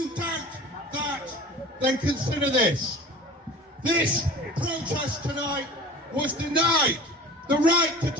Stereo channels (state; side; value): normal; both; correlation 0.41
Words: doubt that, then consider this. This protest tonight was denied the right to